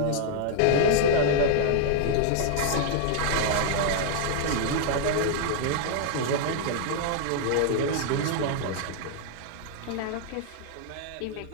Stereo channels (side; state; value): both; different; correlation 0.00